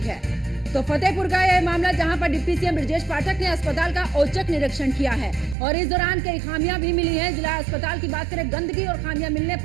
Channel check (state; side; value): drops out; left; at 5.6 s